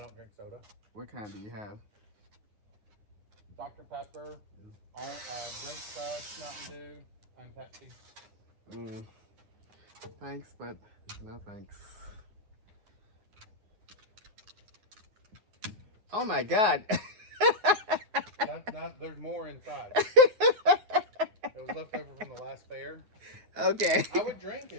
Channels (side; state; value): left; late; 9.5 ms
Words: don't drink soda. What kind do you have? Dr. Pepper, Drink Fresh, Mountain Dew, and Pepsi. Thanks, but no thanks. Oh my God. There's more inside. It was left over from the last fair. Okay. I would drink